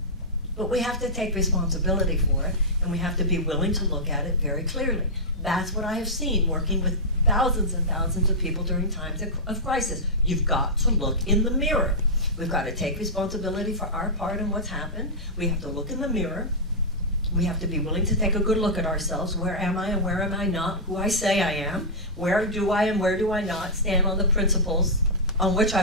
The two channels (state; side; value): normal; both; correlation -0.11